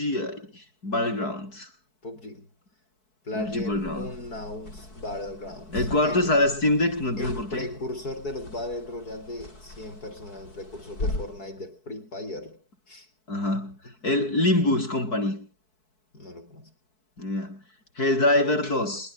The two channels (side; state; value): right; late; 4.6 ms